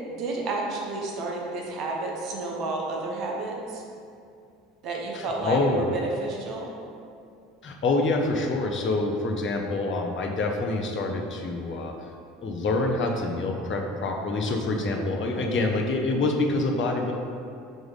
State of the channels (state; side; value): normal; both; correlation 0.42